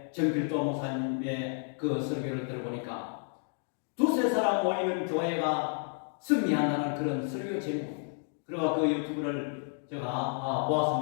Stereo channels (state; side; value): silent; right; 56 dB below the other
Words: 정필도 목사님의 그 설교를 들어보니까 두세 사람 모이는 교회가 승리한다는 그런 설교 제목. 그리고 그 유튜브를 제가